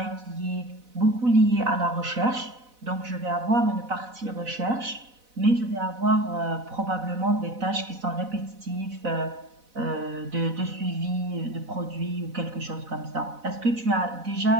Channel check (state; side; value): late; left; 4.0 ms